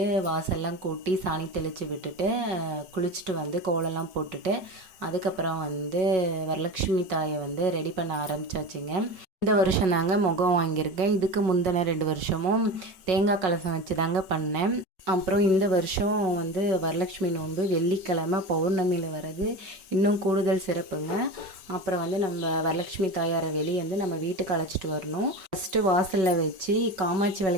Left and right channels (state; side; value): late; left; 5.4 ms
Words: வாசல்லாம் கூட்டி சாணி தெளித்து விட்டுட்டு குளிச்சுட்டு வந்து கோலம்லாம் போட்டுட்டு அதுக்கப்புறம் வரலட்சுமி தாயை ரெடி பண்ண ஆரம்பித்தாச்சுங்க. இந்த வருஷம் தாங்க முகம் வாங்கியிருக்கேன். இதுக்கு முந்தின 2 வருஷமும் தேங்காய் கலசம் வச்சு தாங்க பண்ணேன். அப்புறம் இந்த வருஷம் வரலட்சுமி நோன்பு வெள்ளிக்கிழமை பௌர்ணமியில் வர்றது இன்னும் கூடுதல் சிறப்புங்க. அப்புறம் நம்ம வரலட்சுமி தாயாரை வெளியே நம்ம வீட்டுக்கு அழைச்சிட்டு வரணும். ஃபஸ்ட்டு வாசலில் வச்சு காமாட்சி